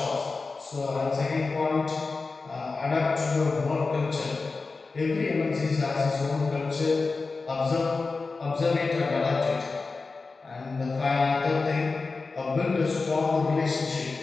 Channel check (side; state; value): right; quieter; 4.0 dB